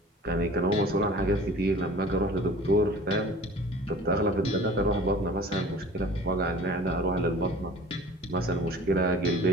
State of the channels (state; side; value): normal; both; correlation 0.44